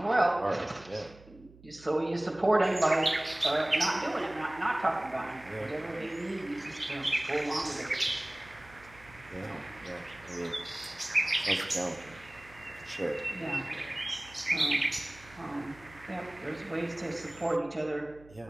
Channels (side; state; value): right; noise; hum, 23 dB below the sound